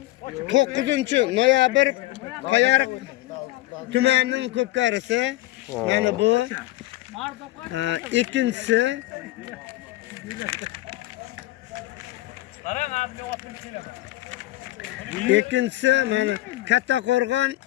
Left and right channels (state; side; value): quieter; right; 17.3 dB